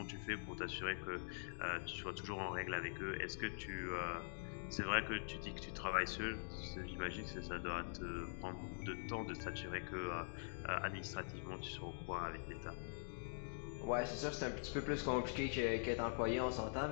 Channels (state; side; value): silent; right; digital silence